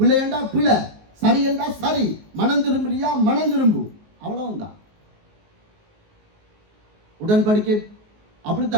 என்றா பிழை, சரி என்றா சரி, மனம் திரும்புறியா மனம் திரும்பு, அவ்வளவுதான். உடன்படிக்கை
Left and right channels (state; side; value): late; left; 19 ms